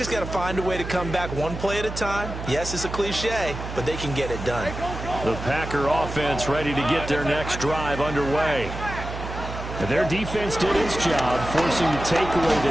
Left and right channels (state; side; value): noise; right; hum, 8 dB below the sound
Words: got to find a way to come back one play at a time. Yes, it's a cliche, but they can get it done. The Packer offense ready to get their next drive underway. And their defense did its job, forcing the takeaway